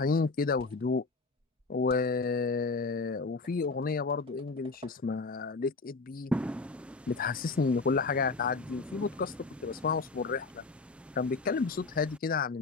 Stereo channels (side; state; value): right; quieter; 4.0 dB